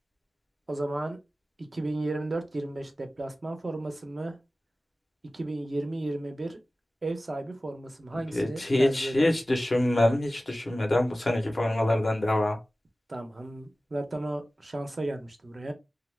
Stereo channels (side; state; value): both; normal; correlation 0.96